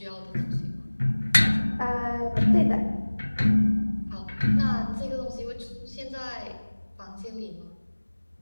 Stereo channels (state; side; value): inverted; both; correlation -1.00